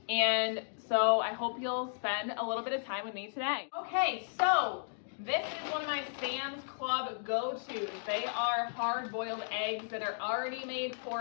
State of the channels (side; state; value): right; silent; digital silence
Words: and so I hope you'll spend a little bit of time with me today. Okay, so this is one of my Sam's Club go-tos. They are hard-boiled eggs that are already made